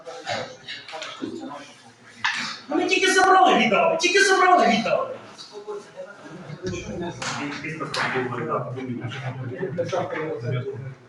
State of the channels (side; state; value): both; identical; correlation 1.00